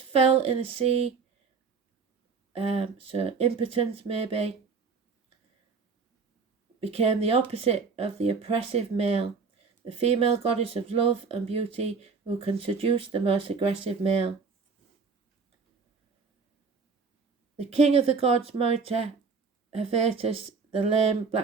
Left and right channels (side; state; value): left; quieter; 5.0 dB